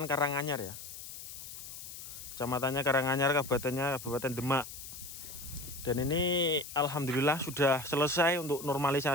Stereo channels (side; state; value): left; noise; hiss, 11 dB below the sound